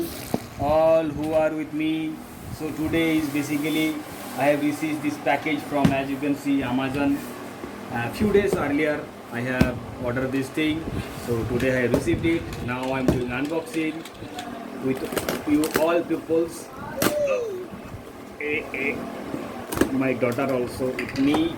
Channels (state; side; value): identical; both; correlation 1.00